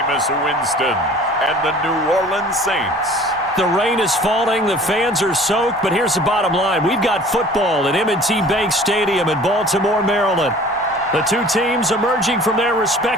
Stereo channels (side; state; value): both; normal; correlation 0.48